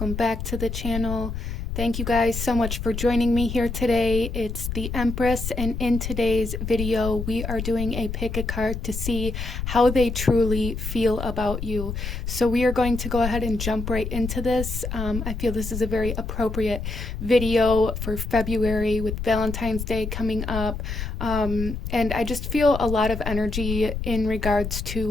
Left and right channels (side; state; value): left; noise; rumble, 5 dB below the sound